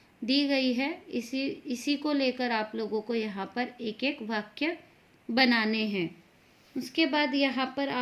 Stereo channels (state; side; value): identical; both; correlation 1.00